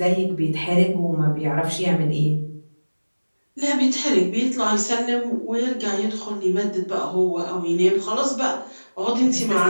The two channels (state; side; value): inverted; both; correlation -1.00